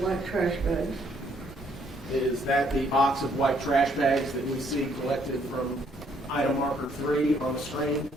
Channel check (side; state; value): both; normal; correlation 0.67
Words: trash bags. Is that the box of white trash bags that we see collected from item marker 3 on the screen?